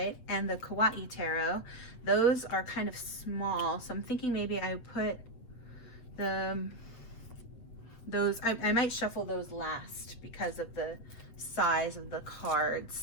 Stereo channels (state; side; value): late; right; 8.4 ms